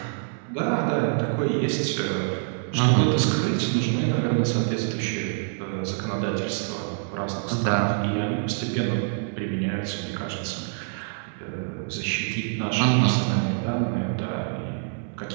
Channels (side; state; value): left; silent; 60 dB below the other